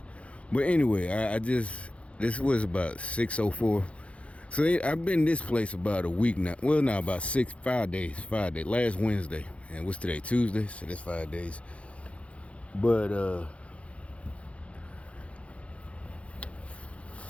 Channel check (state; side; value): late; right; 0.062 ms